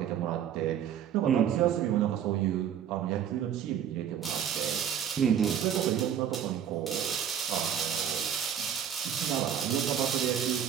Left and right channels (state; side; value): quieter; left; 9.1 dB